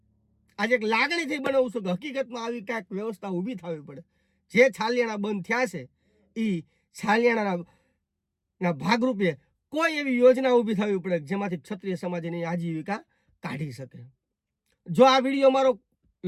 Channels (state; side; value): identical; both; correlation 1.00